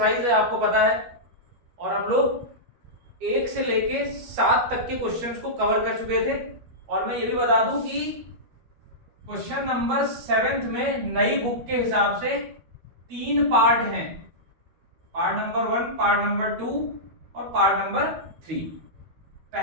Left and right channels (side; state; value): left; late; 12 ms